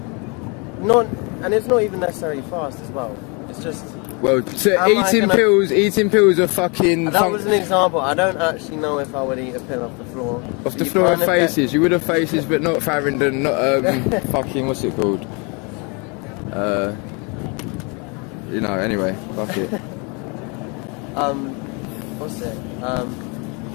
and it's not even necessarily fast as well. It's just. Well, so eating pills are fucking. That was an example. I don't actually know if I would eat a pill off the floor. Off the floor of faces, you would have faces, but not Farringdon, not fucking what's it called? Anyway, fuck it. What's it?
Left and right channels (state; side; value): quieter; right; 31.8 dB